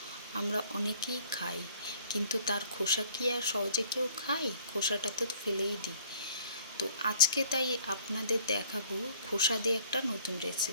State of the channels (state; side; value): inverted; both; correlation -0.56